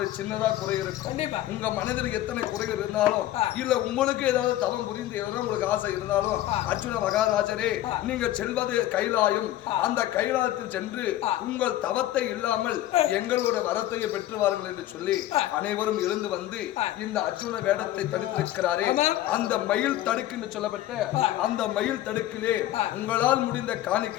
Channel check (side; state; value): right; quieter; 14.0 dB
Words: சின்னதா குறை இருக்கும். உங்க மனதில் எத்தனை குறைகள் இருந்தாலும் இல்ல உங்களுக்கு ஏதாவது தவம் புரிந்து எதனா உங்களுக்கு ஆசை இருந்தாலும் அர்ஜுன மகாராஜரே நீங்க செல்வது கைலாயம், அந்த கைலாயத்தில் சென்று உங்கள் தவத்தை இல்லாமல் எங்களோட வரத்தையை பெற்று வாருங்கள் என்று சொல்லி அனைவரும் எழுந்து வந்து இந்த அர்ஜுன வேடத்தை தடுத்திருக்கிறாரே, அந்த மயில் தடுக்கு என்று சொல்லப்பட்ட அந்த மயில் தடுக்கிலே உங்களால் முடிந்த